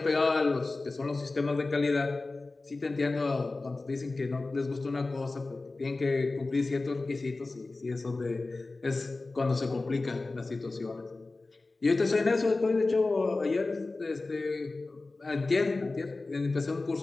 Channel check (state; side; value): quieter; right; 3.4 dB